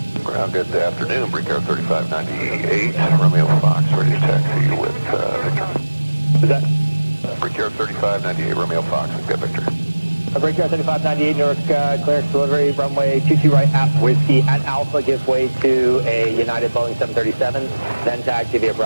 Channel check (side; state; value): both; inverted; correlation -1.00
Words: Ground, good afternoon. Brickyard 3598, Romeo Fox, ready to taxi with Victor. Is that? Brickyard 3598, Romeo Fox, we've got Victor. Brickyard 3598, Newark, clearance delivery, runway 22 right at Whiskey at Alpha, give way to a United Boeing 737, then taxi via